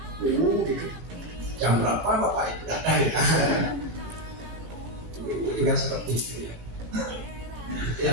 Jam berapa Bapak itu datang ya? Itu juga seperti itu ya. Jadi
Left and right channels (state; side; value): late; left; 17 ms